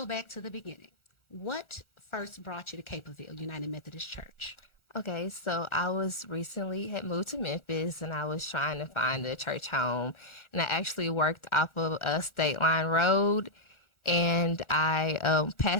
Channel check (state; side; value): late; right; 1.4 ms